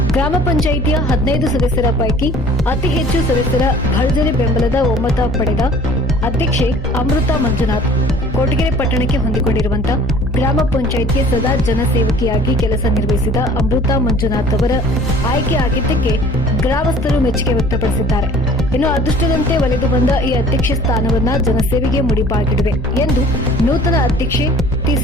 ಗ್ರಾಮ ಪಂಚಾಯಿತಿಯ 15 ಸದಸ್ಯರ ಪೈಕಿ ಅತಿ ಹೆಚ್ಚು ಸದಸ್ಯರ ಭರ್ಜರಿ ಬೆಂಬಲದ ಒಮ್ಮತ ಪಡೆದ ಅಧ್ಯಕ್ಷೆ ಅಮೃತಾ ಮಂಜುನಾಥ್. ಕೊರಟಗೆರೆ ಪಟ್ಟಣಕ್ಕೆ ಹೊಂದಿಕೊಂಡಿರುವಂತಹ ಗ್ರಾಮ ಪಂಚಾಯಿತಿಯ ಸದಾ ಜನಸೇವಕಿಯಾಗಿ ಕೆಲಸ ನಿರ್ವಹಿಸಿದ ಅಮೃತಾ ಮಂಜುನಾಥ್ ಅವರ ಆಯ್ಕೆ ಆಗಿದ್ದಕ್ಕೆ ಗ್ರಾಮಸ್ಥರು ಮೆಚ್ಚುಗೆ ವ್ಯಕ್ತಪಡಿಸಿದ್ದಾರೆ. ಇನ್ನು ಅದೃಷ್ಟದಂತೆ ಒಲಿದು ಬಂದ ಈ ಅಧ್ಯಕ್ಷ ಸ್ಥಾನವನ್ನ ಜನಸೇವೆಗೆ ಮುಡಿಪಾಗಿಡುವೆ ಎಂದು ನೂತನ ಅಧ್ಯಕ್ಷೆ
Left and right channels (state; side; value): normal; both; correlation 0.50